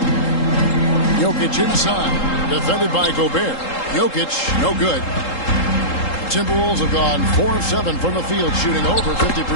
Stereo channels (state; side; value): late; right; 3.8 ms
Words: Jokic inside. Defended by Gobert. Jokic, no good. Timberwolves have gone 4 of 7 from the field, shooting over 50%.